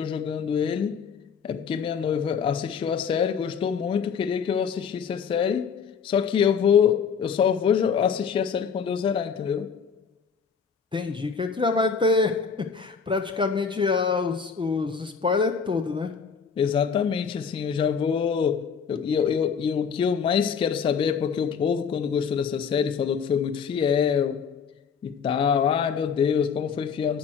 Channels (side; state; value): right; quieter; 6.4 dB